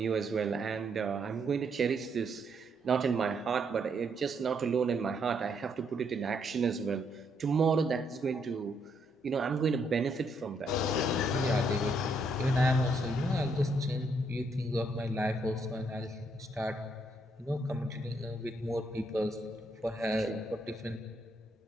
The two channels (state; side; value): normal; both; correlation 0.74